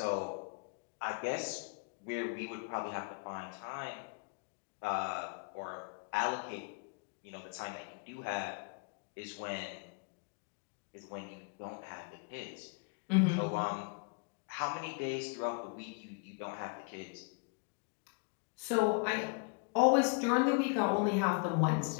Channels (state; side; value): quieter; right; 36.4 dB